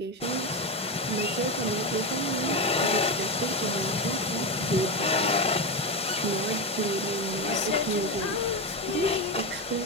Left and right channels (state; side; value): normal; both; correlation 0.15